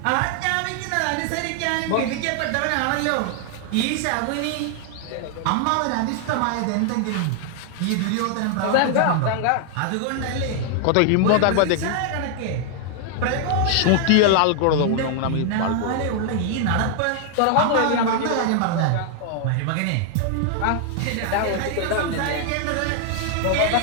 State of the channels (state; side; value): different; both; correlation 0.00